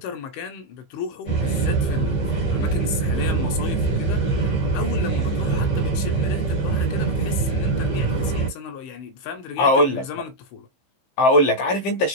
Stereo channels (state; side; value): late; right; 16 ms